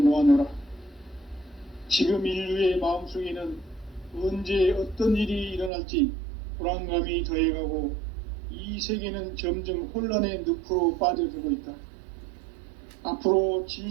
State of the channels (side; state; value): left; drops out; at 5.7 s